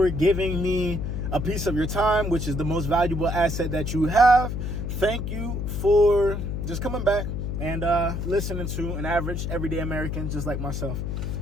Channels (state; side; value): noise; left; hum, 3 dB below the sound